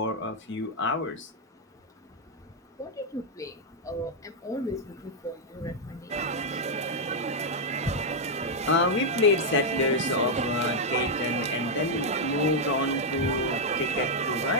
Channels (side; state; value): both; normal; correlation -0.02